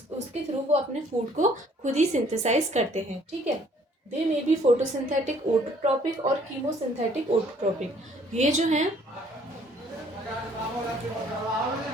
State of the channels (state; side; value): normal; both; correlation 0.60